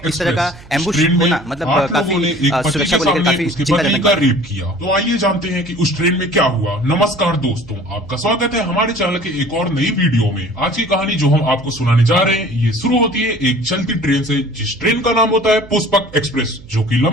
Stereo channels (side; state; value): right; noise; hum, 21 dB below the sound